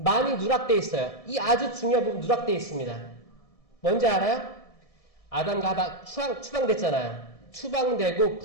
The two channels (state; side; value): late; right; 1.7 ms